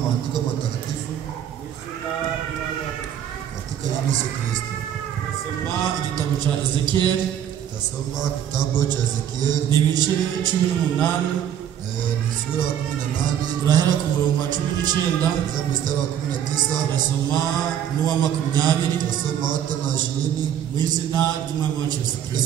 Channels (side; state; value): left; quieter; 9.7 dB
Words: maandiko matakatifu katika jina la Yesu Kristo. Nasoma igitabo cha Ezekiel. Tasoma kitabu cha Ezekiel. Ni ibice 18. Ni sura ya 18. Turahera ku murongo wa 19. Kuanzia mstari wa 19. Nasoma n'uwa 20. Tasoma hata na 20. Mu izina ry'Umwami wacu Yesu